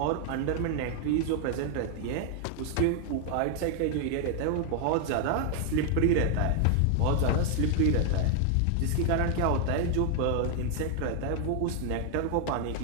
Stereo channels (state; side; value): different; both; correlation 0.00